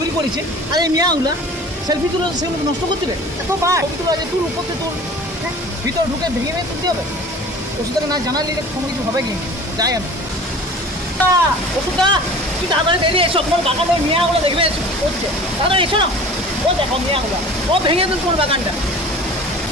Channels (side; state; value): both; normal; correlation 0.42